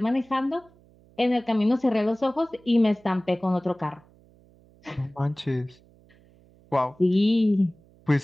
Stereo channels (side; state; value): right; noise; hum, 29 dB below the sound